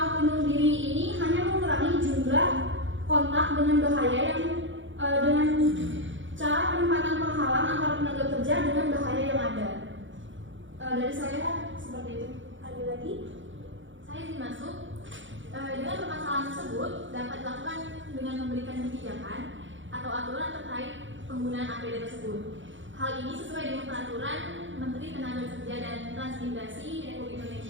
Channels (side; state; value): left; late; 0.56 ms